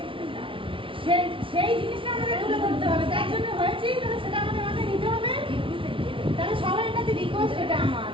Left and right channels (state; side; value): late; left; 0.25 ms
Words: সেই জিনিসটা আমাদের তুলে ধরতে হবে, তার জন্য হয়েছে, তাহলে সেটা আমাদের মাথায় নিতে হবে। তাহলে সবার কাছে রিকোয়েস্ট এটা আমার,